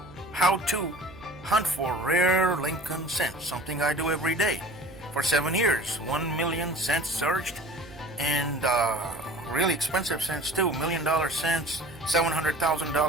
how to hunt for rare Lincoln cents, something I do every day. For 7 years, 1 million cents searched, and really expensive cents too, $1,000,000 cents,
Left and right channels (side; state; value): right; noise; hum, 19 dB below the sound